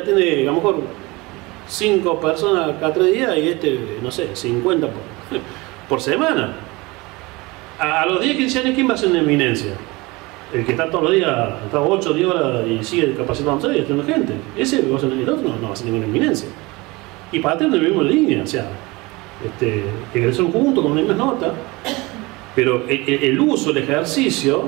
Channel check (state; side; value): quieter; left; 23.4 dB